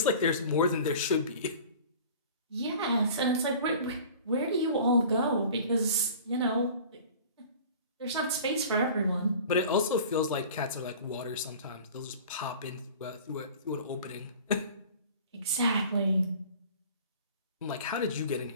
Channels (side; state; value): both; inverted; correlation -0.43